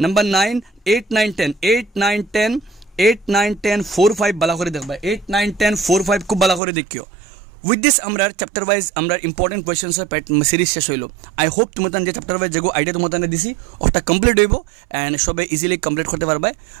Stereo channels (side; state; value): left; drops out; at 6.6 s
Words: নাম্বার 9 8 9 10 8 9 10 8 9 10 4 5 ভালো করে দেখবা 8 9 10 4 5 খুব ভালো করে দেখিও উইথ দিস আমরা চ্যাপ্টার ওয়াইজ আমরা ইম্পর্টেন্ট কোয়েশ্চেন্স সিরিজ শেষ হইল আই হোপ তোমাদের যে চ্যাপ্টার ওয়াইজ যেগো আইডিয়া তোমাদের দিছি ওটা কমপ্লিট হইব অ্যান্ড সবে ইজিলি কমপ্লিট করতে পারবে